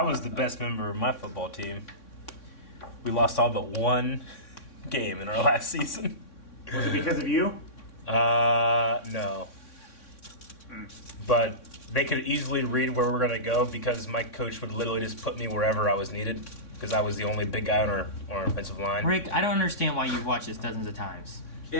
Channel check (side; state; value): right; late; 3.6 ms